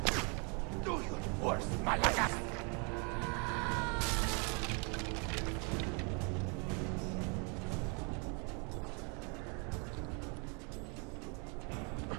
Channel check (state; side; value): quieter; left; 34.6 dB